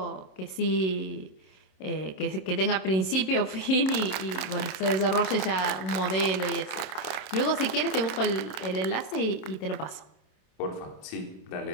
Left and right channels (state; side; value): late; right; 26 ms